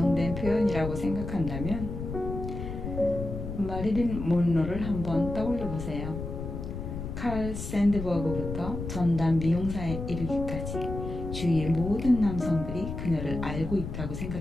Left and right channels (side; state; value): left; noise; rumble, 6 dB below the sound